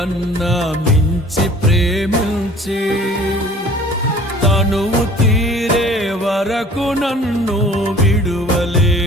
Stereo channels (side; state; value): both; normal; correlation 0.49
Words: మించి ప్రేమించి తనువు తీరే వరకు నన్ను